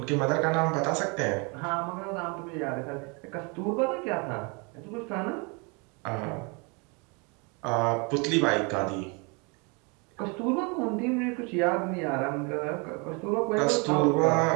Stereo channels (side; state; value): left; quieter; 31.6 dB